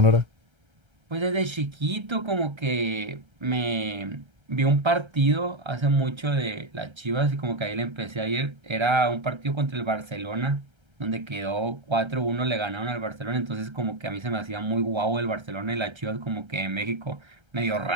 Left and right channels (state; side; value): late; left; 1.3 ms